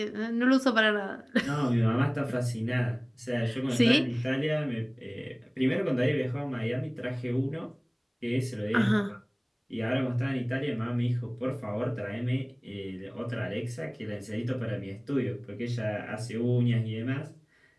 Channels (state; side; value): identical; both; correlation 1.00